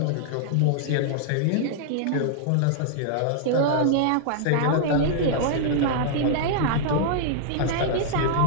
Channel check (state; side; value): different; both; correlation -0.01